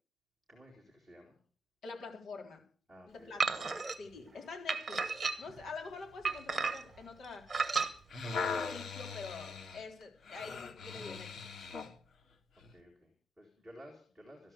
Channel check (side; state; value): both; normal; correlation 0.79